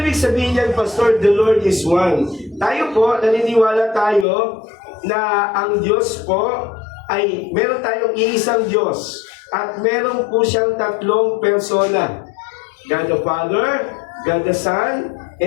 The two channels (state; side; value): drops out; right; at 4.2 s